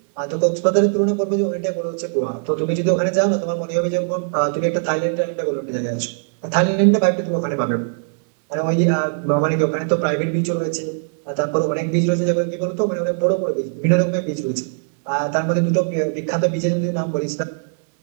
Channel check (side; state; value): left; silent; digital silence